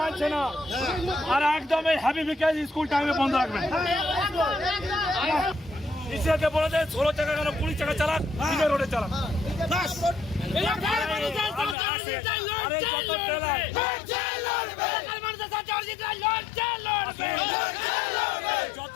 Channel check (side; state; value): right; drops out; at 11.8 s